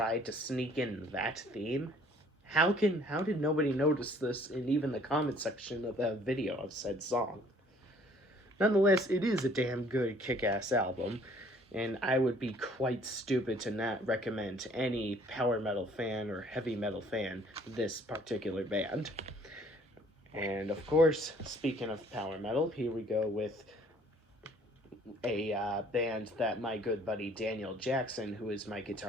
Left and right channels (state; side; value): normal; both; correlation 0.58